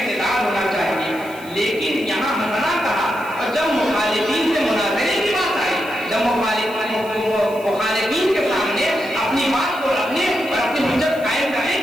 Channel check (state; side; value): noise; right; hiss, 21 dB below the sound